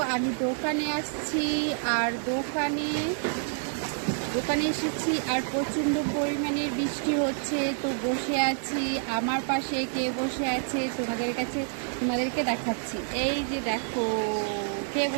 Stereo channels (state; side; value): silent; left; digital silence